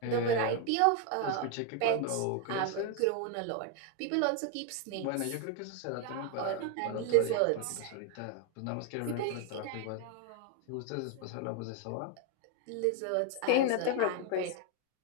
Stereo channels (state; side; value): different; both; correlation 0.01